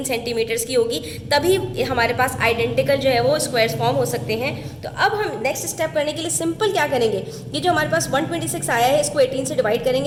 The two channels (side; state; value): both; identical; correlation 1.00